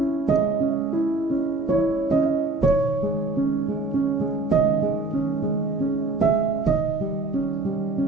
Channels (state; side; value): quieter; left; 3.2 dB